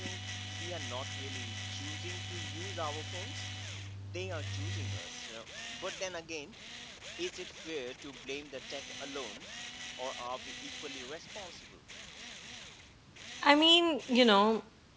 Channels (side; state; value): both; identical; correlation 1.00